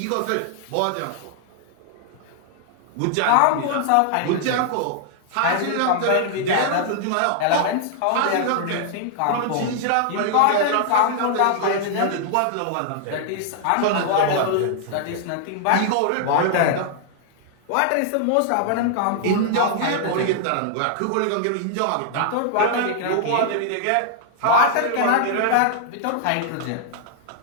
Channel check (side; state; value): both; different; correlation -0.01